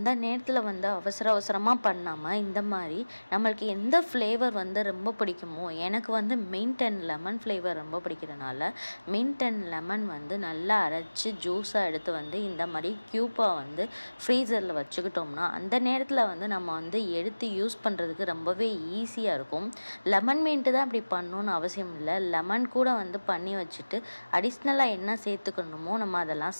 நேரத்தில் அவசரமாக பண்ணாமல் இந்த மாதிரி நம்மளுக்கு எந்த ஃப்ளேவர் ரொம்ப பிடிக்குமோ, எனக்கு மின்ட் அண்ட் லெமன் ஃப்ளேவர் ரொம்ப பிடிக்கிறதுனால மின்ட் அண்ட் லெமன் நல்லா அரைச்சி ஜூஸாக எடுத்து இந்த மாதிரி க்யூப்பாக ஃப்ரீசரில் வச்சுக்கிட்டோம்னா அந்த நேரத்தில் நம்ம எடுத்து யூஸ் பண்ணுறதுக்கு ரொம்பவே ஈஸியாக இருக்கும். லெமன் மின்ட்டு தான் அப்படி பண்ணணும்னு அவசியம் இல்லை. லெமன் கூட பண்ணி வச்சுட்டு அடிஷ்னலாக என்ன சேர்த்துக்கணும் நம்ம அதெல்லாம்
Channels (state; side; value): inverted; both; correlation -1.00